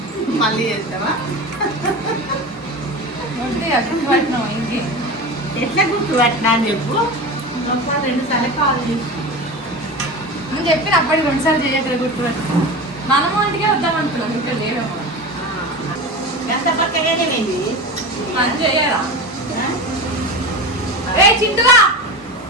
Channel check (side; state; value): both; normal; correlation 0.28